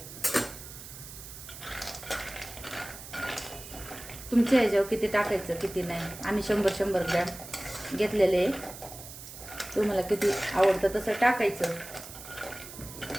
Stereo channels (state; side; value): noise; right; hiss, 14 dB below the sound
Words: तुमच्या ह्याच्यावर किती टाकायचं किती नाही. आम्ही 100-100 ग्रॅम घेतलेले. तुम्हाला किती आवडतं तसं टाकायचं.